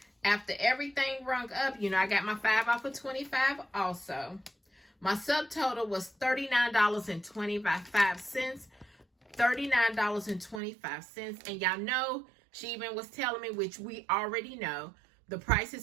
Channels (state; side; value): drops out; left; at 10.6 s